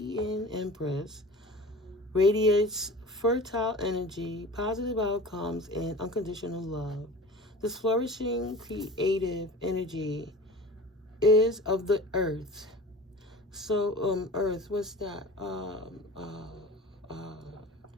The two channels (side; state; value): both; normal; correlation 0.38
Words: Empress radiates fertile energy, positive outcomes, and unconditional love. This flourishing creative energy is of the earth. So, earth, what's that?